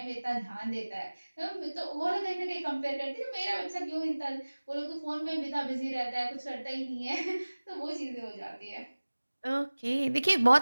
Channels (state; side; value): inverted; both; correlation -1.00